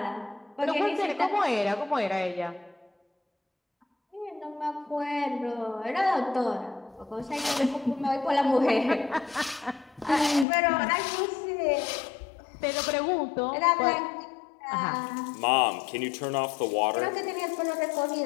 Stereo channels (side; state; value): right; drops out; at 10.5 s